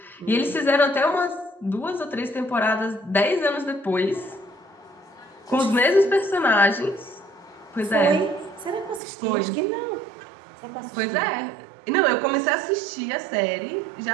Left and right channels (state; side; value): drops out; left; at 9.0 s